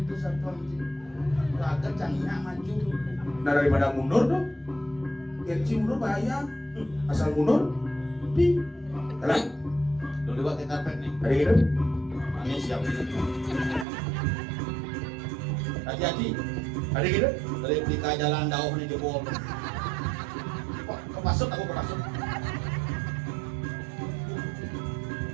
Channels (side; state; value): left; drops out; at 13.9 s